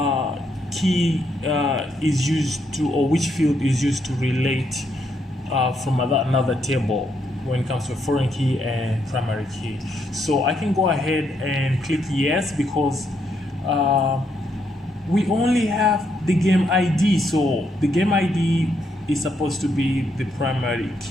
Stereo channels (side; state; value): both; normal; correlation 0.76